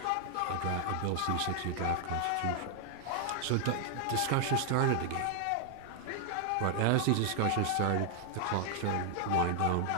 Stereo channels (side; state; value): both; different; correlation 0.00